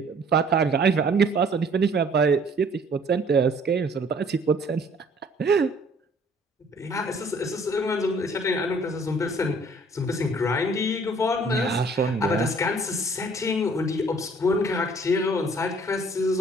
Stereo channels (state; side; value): normal; both; correlation 0.56